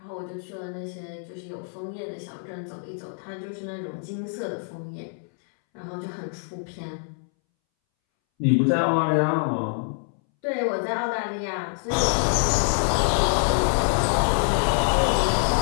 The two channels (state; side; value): silent; right; 61 dB below the other